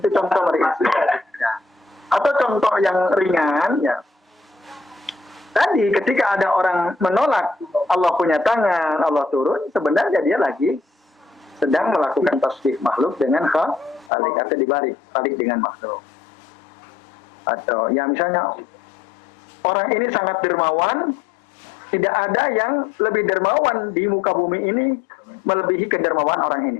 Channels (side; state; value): right; drops out; at 14.1 s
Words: Ya. Atau contoh yang ringan, ya. Tadi ketika ada orang menolak Allah punya tangan, Allah turun, sebenarnya dia lagi sedang melakukan tasbih makhluk dengan khalik atau dibalik dengan makhluk. Atau ya misalnya orang ini sangat dermawan, tidak ada yang lebih dermawan di muka bumi ini melebihi kedermawan orang